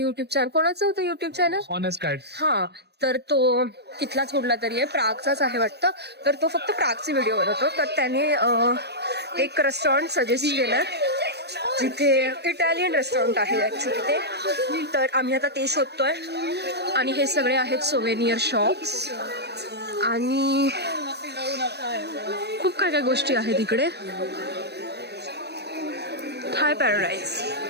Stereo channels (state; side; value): late; left; 0.48 ms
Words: युट्यूब चॅनल, ऑनेस्ट गाईड. तर तो तिथलाच कुठला तरी आहे, प्रागचाच आहे वाटतं. तर तो फक्त प्रागचे व्हिडिओ बनवतो, तर त्याने एक रेस्टॉरंट सजेस्ट केलं जिथे इटालियन रेस्टॉरंट आहे ॲक्च्युली ते. तर आम्ही आता ते शोधतोय. आणि हे सगळे आहेत सोवेनियर शॉप्स आणि खूप काय गोष्टी आहेत इकडे. थाय पॅराडाईज